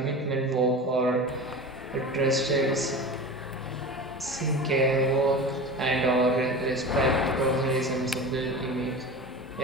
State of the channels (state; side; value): normal; both; correlation 0.31